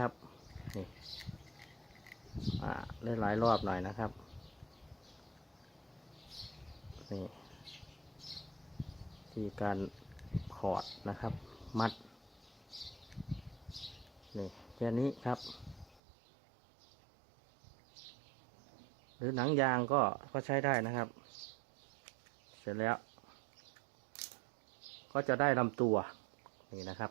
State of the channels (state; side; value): drops out; left; at 16.0 s